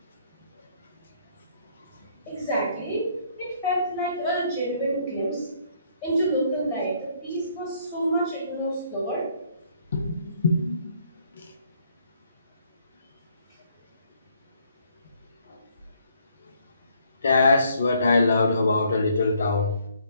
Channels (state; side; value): inverted; both; correlation -0.67